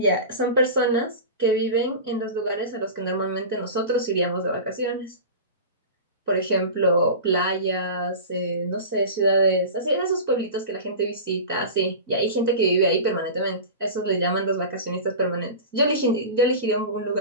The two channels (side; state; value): both; inverted; correlation -0.31